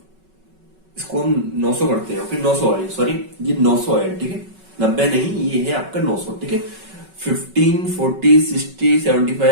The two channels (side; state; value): left; late; 5.3 ms